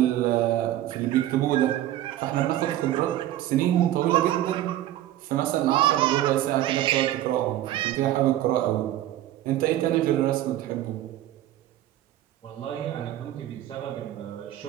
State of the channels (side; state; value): left; quieter; 13.4 dB